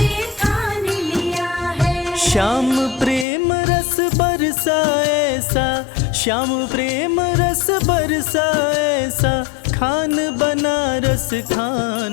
ठान लिया है। श्याम प्रेम रस बरसा ऐसा, श्याम प्रेम रस बरसा ऐसा, खान बनारस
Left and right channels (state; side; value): drops out; right; at 3.2 s